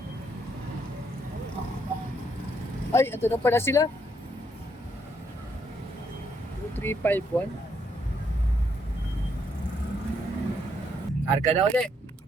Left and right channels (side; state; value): both; normal; correlation 0.73